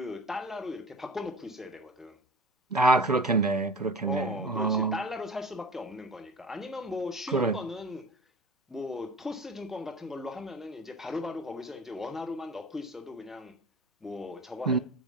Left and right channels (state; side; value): normal; both; correlation 0.39